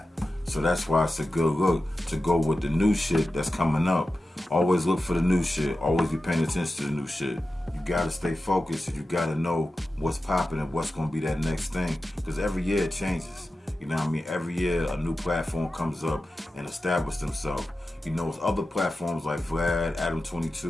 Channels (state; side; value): normal; both; correlation 0.93